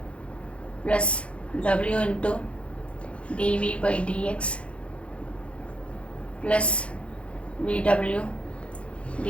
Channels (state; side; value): late; right; 0.061 ms